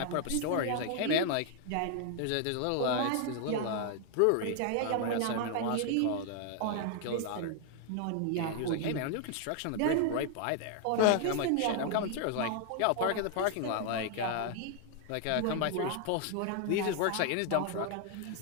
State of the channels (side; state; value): both; different; correlation 0.00